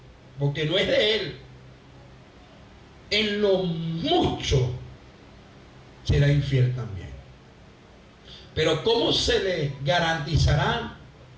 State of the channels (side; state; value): both; identical; correlation 1.00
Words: porque no es de él, en lo mucho será infiel también. Pero ¿cómo se le garantizará